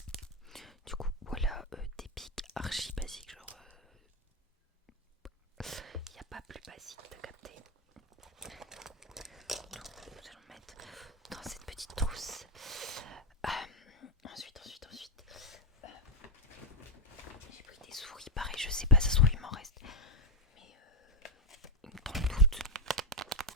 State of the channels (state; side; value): normal; both; correlation -0.01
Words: Du coup voilà des pics archi basiques genre il n'y a pas plus basique, t'as capté. Donc nous allons mettre dans cette petite trousse. Ensuite j'ai pris des souris, pareil je sais pas, ça se trouve il m'en reste. Mais dans le doute.